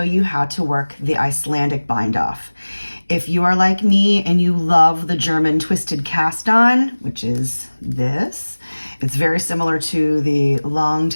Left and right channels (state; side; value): inverted; both; correlation -1.00